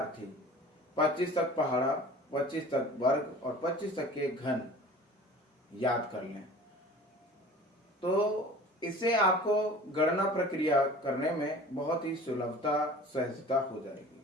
25 तक पहाड़ा, 25 तक वर्ग और 25 तक के घन याद कर लें। तो इससे आपको गणना प्रक्रिया करने में बहुत ही सुलभता, सहजता हो जाएगी।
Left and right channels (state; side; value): normal; both; correlation 0.43